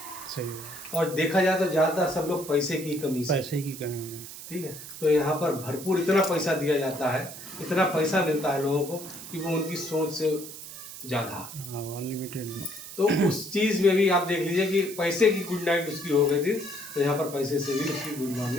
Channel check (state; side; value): noise; right; hiss, 12 dB below the sound